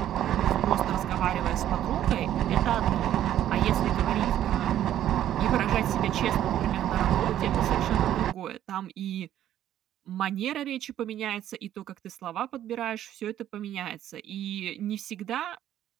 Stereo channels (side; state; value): left; quieter; 11.7 dB